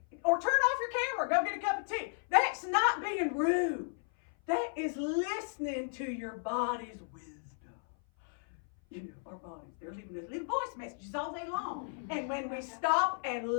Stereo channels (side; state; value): right; silent; 55 dB below the other